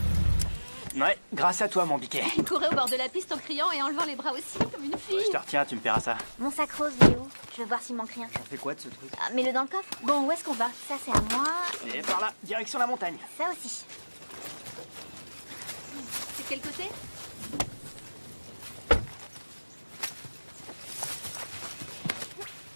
Ouais, grâce à toi, mon biquet. Il courait au bord de la piste en criant et en levant les bras aussi, comme une fille. Je te retiens, tu me paieras ça. Mon sac rose, il est où? Je veux voir s'il manque rien. J'en fais quoi de ce truc? Ah, mets-le dans le coffre. Bon, où est-ce qu'on va? Ça, c'est à moi. Et par là, direction la montagne. Ça aussi. C'est quel côté?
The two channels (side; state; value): both; inverted; correlation -1.00